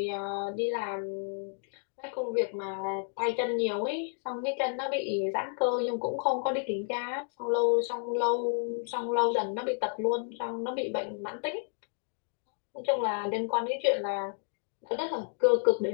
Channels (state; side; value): silent; right; 57 dB below the other